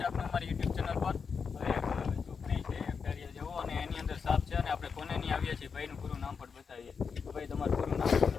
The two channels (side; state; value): right; quieter; 5.8 dB